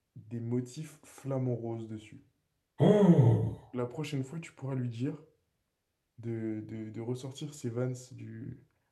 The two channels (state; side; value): identical; both; correlation 1.00